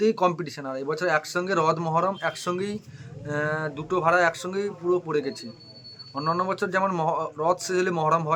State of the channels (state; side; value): identical; both; correlation 1.00